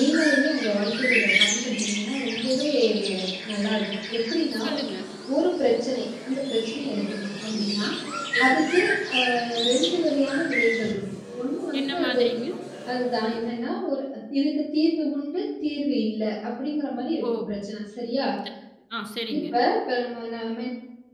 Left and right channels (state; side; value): identical; both; correlation 1.00